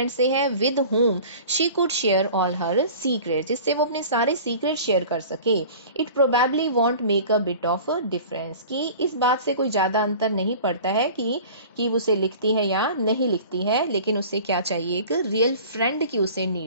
से है with whom she could share all her secrets, जिससे वो अपने सारे सीक्रेट शेयर कर सके. It probably want make a bit of difference, कि इस बात से कोई ज्यादा अंतर नहीं पड़ता है कि वो उसे लिखती है या नहीं लिखती है, लेकिन उसे क्या चाहिए, एक रियल फ्रेंड की उसे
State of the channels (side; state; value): both; inverted; correlation -0.42